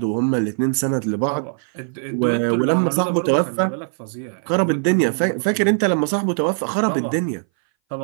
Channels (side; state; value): left; silent; 60 dB below the other